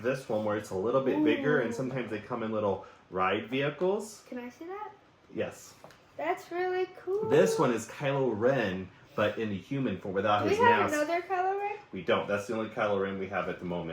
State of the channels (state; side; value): identical; both; correlation 1.00